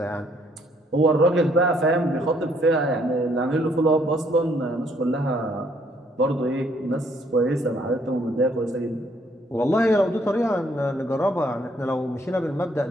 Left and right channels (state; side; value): normal; both; correlation 0.67